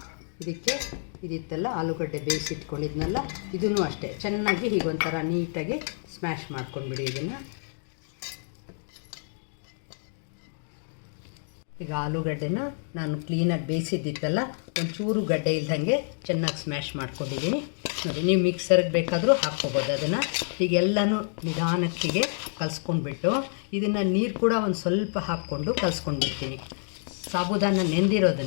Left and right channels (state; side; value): silent; right; 59 dB below the other